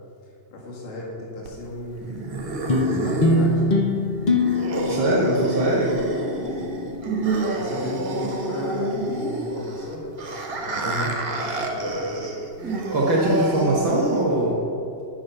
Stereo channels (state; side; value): late; right; 2.8 ms